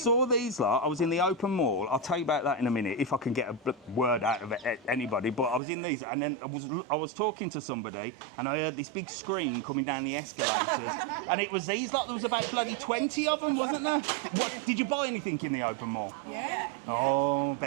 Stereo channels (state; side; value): drops out; left; at 5.6 s